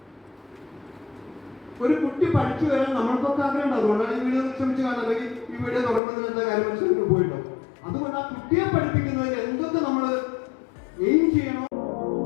ഒരു കുട്ടി പഠിച്ചു വരാൻ നമ്മൾക്കൊക്കെ ആഗ്രഹം. അതുകൊണ്ടാണ് ഈ വീഡിയോ ശ്രമിച്ച് കാണാൻ, അല്ലെങ്കിൽ ഈ വീഡിയോ തുടങ്ങുന്നതിന് എന്താ കാര്യം മനസ്സിലാക്കി പോയിട്ടോ. അതുകൊണ്ട് ആ കുട്ടിയെ പഠിപ്പിക്കുന്നതിന് എന്തൊക്കെ നമ്മൾ എയിം ചെയ്യണോ.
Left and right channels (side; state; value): right; drops out; at 6.0 s